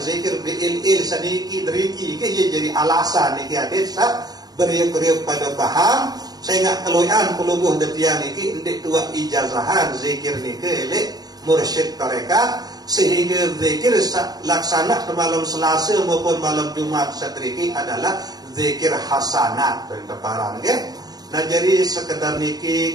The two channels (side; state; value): left; late; 0.19 ms